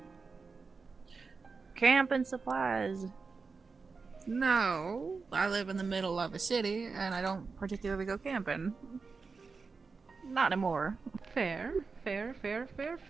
Camping supplies. No, I live in the middle of a city, and I don't particularly go camping. Not anymore. Fair.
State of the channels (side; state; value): left; quieter; 4.6 dB